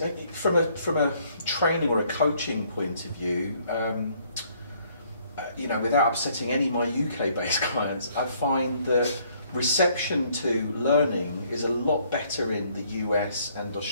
from a training or a coaching point of view. Without upsetting any of my UK-based clients, I find that reception to learning is a lot better in the US and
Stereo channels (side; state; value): both; inverted; correlation -0.65